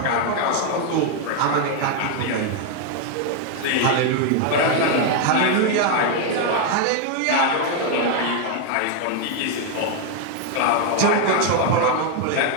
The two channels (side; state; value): both; different; correlation 0.01